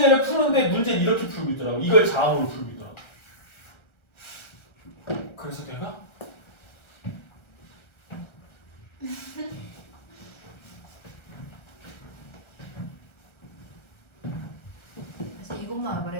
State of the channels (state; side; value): late; right; 1.3 ms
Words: 푸는데 문제는 이렇게 풀고 있더라고. 이걸 자음으로 풀고 있더라고. 그래서 내가 사실 이것만